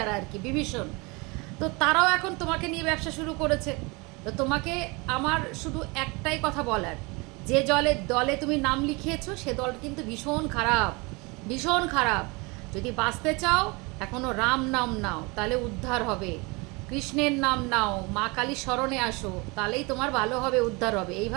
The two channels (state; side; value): quieter; left; 27.2 dB